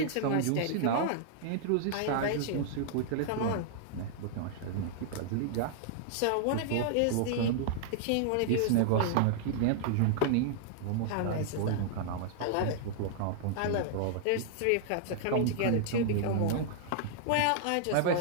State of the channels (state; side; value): different; both; correlation -0.01